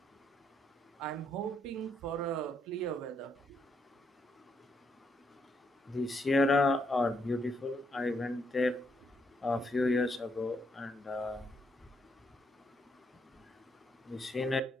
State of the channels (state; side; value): normal; both; correlation 0.76